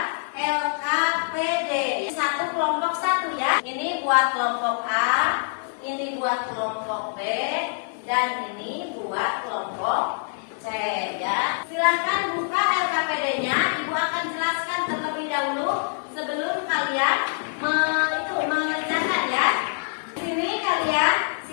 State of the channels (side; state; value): right; silent; digital silence